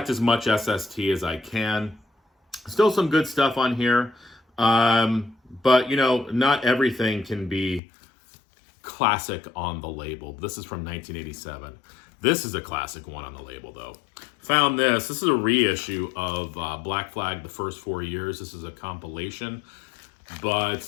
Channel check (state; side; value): drops out; right; at 7.8 s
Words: as much SST as I can. Still some good stuff on here. But, not everything can be classic on the label. This is from 1987. This is a classic one on the label, though. Found this. This is a reissue of Black Flag, the first 4 years. This is a compilation.